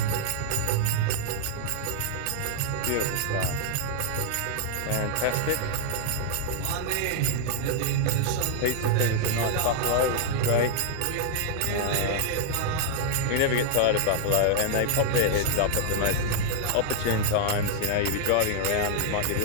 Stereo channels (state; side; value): different; both; correlation -0.01